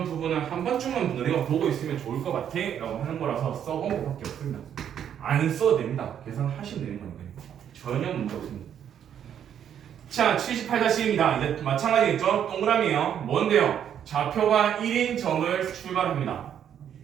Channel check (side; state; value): left; quieter; 9.2 dB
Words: 부분을 한 번쯤은 너네가 보고 있으면 좋을 것 같아 라고 하는 거라서 써본 것밖에 없습니다. 안 써도 됩니다. 계산하시면 되는 거니까요. 전혀 문제 없습니다. 자, 78-1입니다. 이제 마찬가지겠죠? 동그라미예요. 뭔데요? 좌표가 1인 점을 출발합니다.